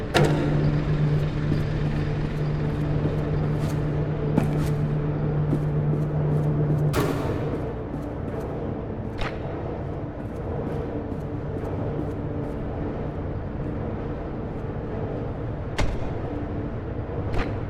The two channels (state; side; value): identical; both; correlation 1.00